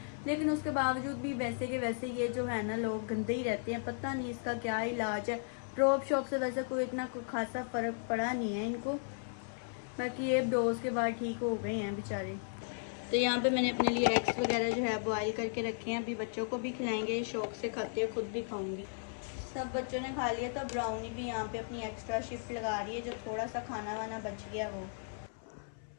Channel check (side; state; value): right; silent; 54 dB below the other